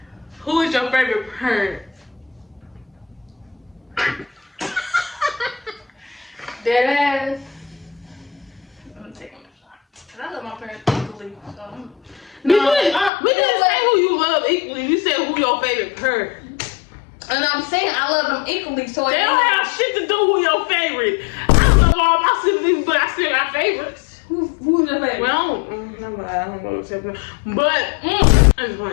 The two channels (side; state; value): right; drops out; at 13.1 s